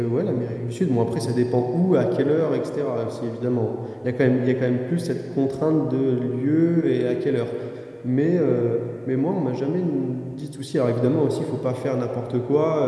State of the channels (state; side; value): identical; both; correlation 1.00